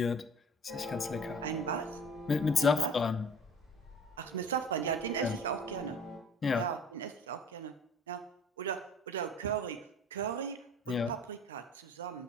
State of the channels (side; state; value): both; normal; correlation 0.44